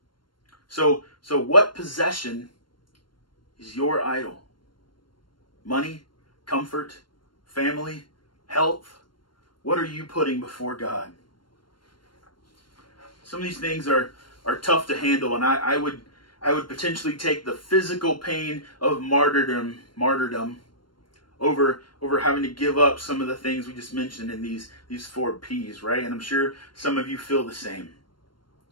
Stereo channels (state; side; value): late; right; 0.72 ms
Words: So what possession is your idol? Money, comfort, family, health? What are you putting before God? Some of these things are tough to handle, and I would potentially take the physical pain of martyrdom over having to give up some of the things we just mentioned in these 4 P's, right? And I'm sure some of you feel the same.